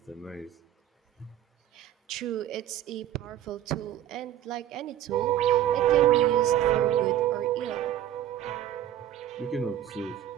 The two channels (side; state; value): left; quieter; 11.8 dB